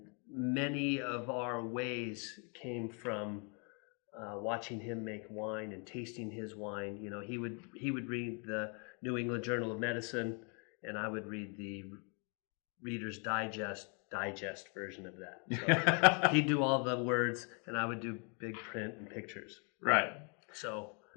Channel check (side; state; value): right; quieter; 36.7 dB